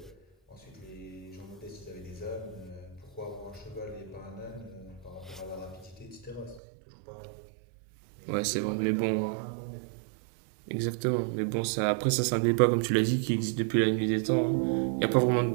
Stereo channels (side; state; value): left; drops out; at 6.6 s